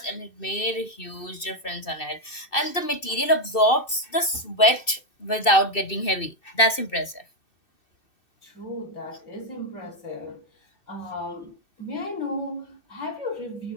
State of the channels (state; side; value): late; right; 2.6 ms